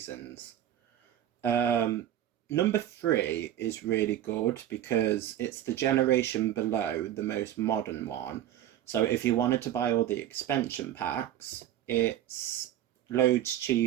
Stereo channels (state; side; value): quieter; left; 11.8 dB